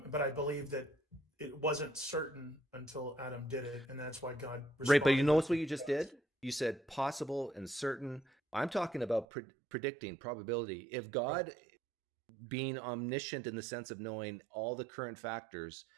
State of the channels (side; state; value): left; drops out; at 9.2 s